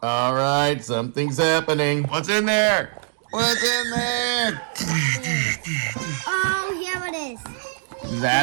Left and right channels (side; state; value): left; silent; digital silence